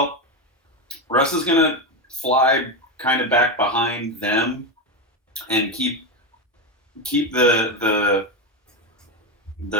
Russ is gonna fly kind of back behind them and keep the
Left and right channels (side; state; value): both; normal; correlation 0.12